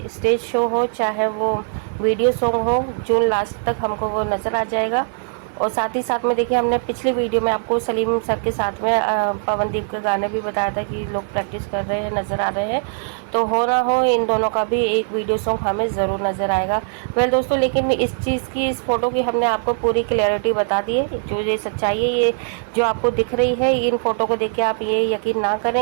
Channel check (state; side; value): silent; left; 63 dB below the other